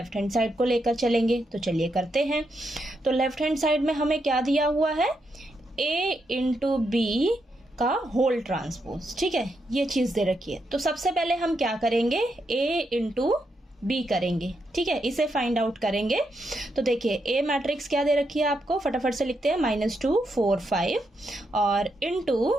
हैंड साइड को लेकर चलेंगे। तो चलिए करते हैं। तो लेफ्ट हैंड साइड में हमें क्या दिया हुआ है, A इंटू बी का होल ट्रांसपोज, ठीक है, ये चीज दे रखी है। तो सबसे पहले हम क्या करेंगे, A इंटू बी करेंगे, ठीक है, इसे फाइंड आउट करेंगे। तो देखिए A मैट्रिक्स क्या दे रखी है आपको, फटाफट से लिखते हैं, -2 4 5 और इनटू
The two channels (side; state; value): both; normal; correlation 0.82